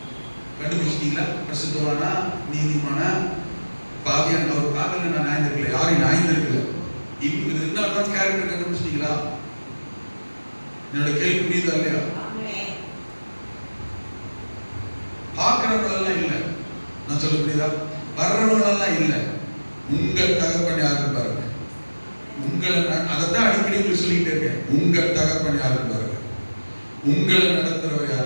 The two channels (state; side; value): inverted; both; correlation -1.00